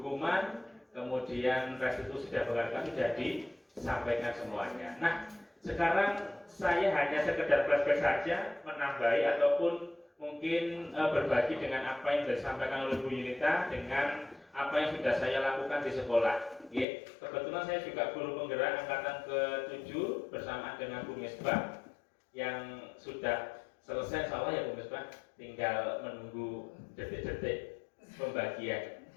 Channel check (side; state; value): right; drops out; at 16.9 s